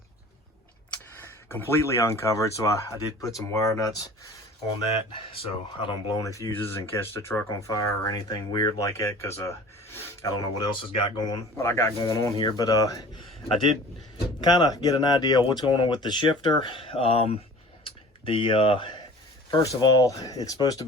completely uncovered. So I did put some wire nuts on that so I don't blow any fuses and catch the truck on fire or anything weird like that, because I don't know what else I got going on here. But I did kind of get an idea of what's going on with the shifter. First of all, it's supposed to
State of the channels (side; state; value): both; normal; correlation 0.44